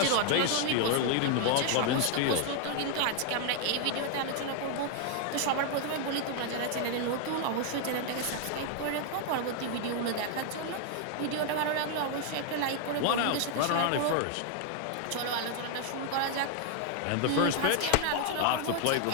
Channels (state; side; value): different; both; correlation 0.00